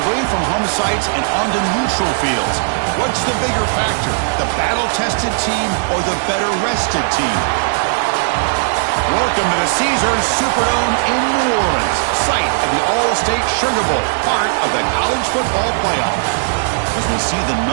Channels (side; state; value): left; silent; digital silence